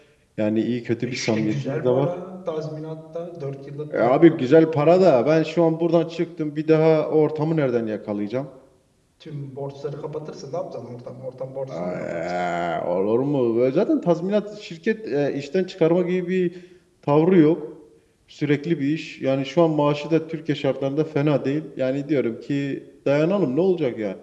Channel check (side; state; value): both; identical; correlation 1.00